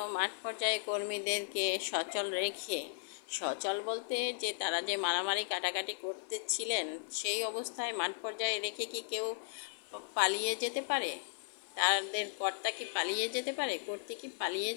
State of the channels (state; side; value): silent; right; 54 dB below the other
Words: মাঠ পর্যায়ে কর্মীদেরকে সচল রেখে, সচল বলতে যে তারা যে মারামারি কাটাকাটি করতেছিলেন সেই অবস্থায় মাঠ পর্যায়ে রেখে কি কেউ পালিয়ে যেতে পারে? তাদের কর্তা কি পালিয়ে যেতে পারে? কর্ত্রী কি পালিয়ে